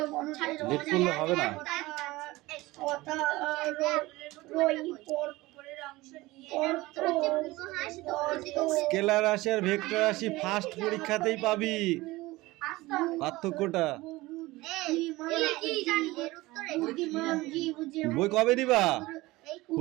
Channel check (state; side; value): quieter; left; 19.9 dB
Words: লেট করলে হবে না। স্কেলার রাশি আর ভেক্টর রাশি ফার্স্ট পরীক্ষাতেই পাবি পার্থক্যটা। বই কবে দিবা?